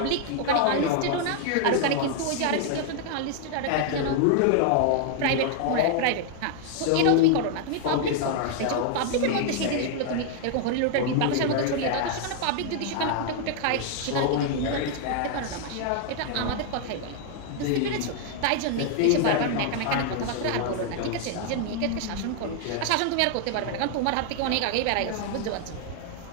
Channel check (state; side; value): different; both; correlation 0.00